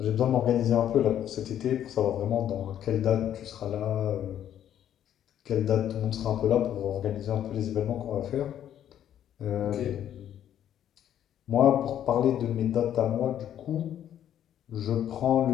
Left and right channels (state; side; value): quieter; right; 10.6 dB